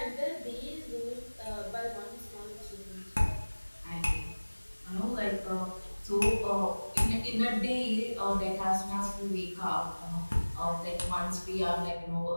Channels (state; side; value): inverted; both; correlation -1.00